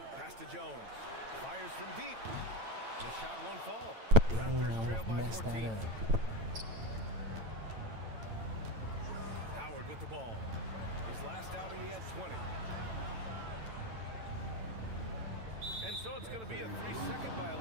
Pass to Jones. Fires from deep. The shot won't fall. Raptors trail by 14. That up. Howard with the ball. His last outing, he had 20. And so it's going to be a 3-second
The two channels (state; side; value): late; left; 9.0 ms